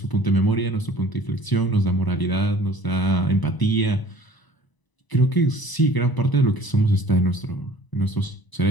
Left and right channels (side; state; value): right; late; 1.0 ms